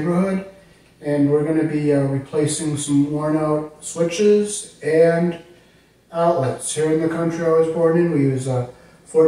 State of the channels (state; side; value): identical; both; correlation 1.00